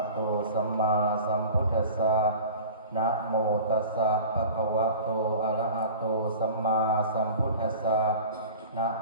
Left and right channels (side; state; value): both; inverted; correlation -0.40